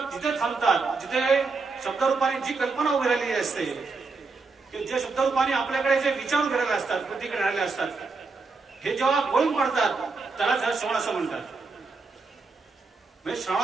जिथे थांबतात, जिथे शब्दरूपाने जी कल्पना उभी राहिलेली असते, जे शब्दरूपाने आपल्याकडे जे विचार उभे राहिले असतात, प्रतिक्रिया राहिले असतात, हे जेव्हा गळून पडतात त्याला श्रवण असं म्हणतात. म्हणजे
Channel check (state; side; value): quieter; left; 4.2 dB